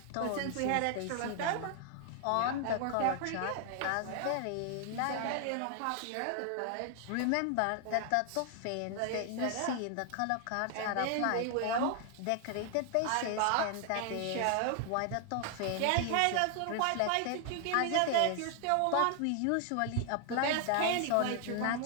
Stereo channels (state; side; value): different; both; correlation 0.00